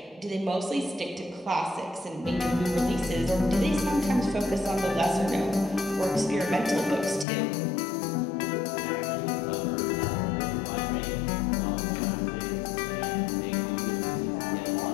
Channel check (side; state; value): right; drops out; at 7.2 s